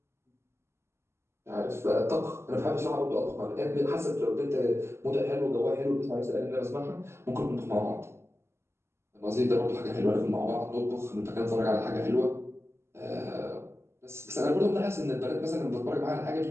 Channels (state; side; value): late; left; 0.13 ms